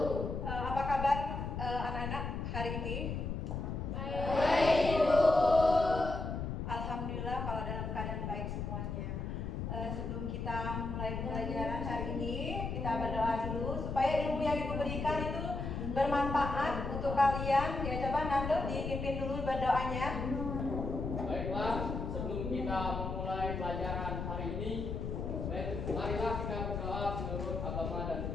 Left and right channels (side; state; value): left; noise; rumble, 4 dB below the sound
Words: Apa kabar anak-anak hari ini? Baik, Bu. Alhamdulillah kalau dalam keadaan baik semuanya. Sebelum kita mulai pelajaran hari ini, kita berdoa dulu supaya ilmu yang Ibu berikan itu bermanfaat untuk kalian. Ya, coba Nando dipimpin dulu berdoanya. Baiklah, sebelum kita memulai pelajaran hari ini, marilah kita berdoa menurut agama dan